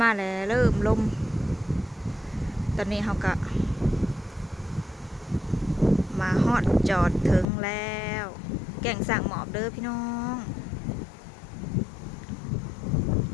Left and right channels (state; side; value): drops out; right; at 7.5 s